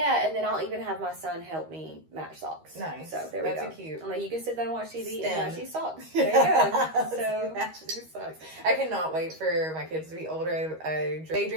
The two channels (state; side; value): late; left; 13 ms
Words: and then I'll even have my son help me match socks. Nice. So there we go. That's cute. I'm like, you can sit there and watch TV and match these socks. There you go. So match these socks. I cannot wait for my kids to be older. I